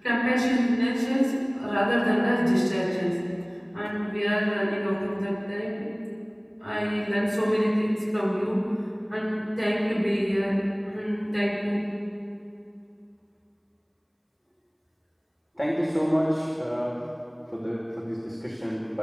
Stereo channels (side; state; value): both; identical; correlation 1.00